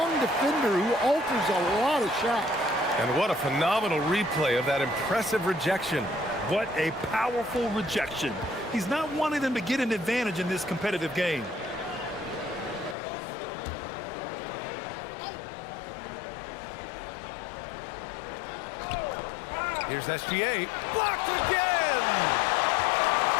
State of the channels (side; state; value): right; drops out; at 13.0 s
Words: defender who alters a lot of shots. And what a phenomenal replay of that impressive rejection. What a powerful rejection. He's not wanting them to get an advantage in this competitive game. Here's SGA. Blocked again!